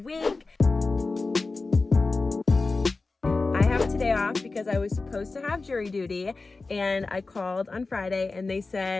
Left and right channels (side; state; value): right; quieter; 3.7 dB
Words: I have today off because I was supposed to have jury duty, and I called on Friday and they